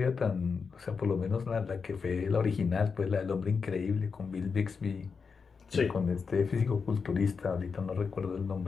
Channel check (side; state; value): right; quieter; 5.4 dB